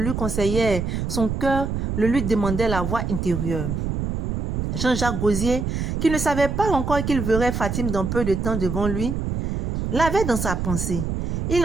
conseillait son cœur, le lui demandait la voix intérieure. Jean-Jacques Gosier, qui ne savait pas encore qu'il verrait Fatim dans peu de temps devant lui, l'avait dans sa pensée. Il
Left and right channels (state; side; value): noise; right; rumble, 2 dB below the sound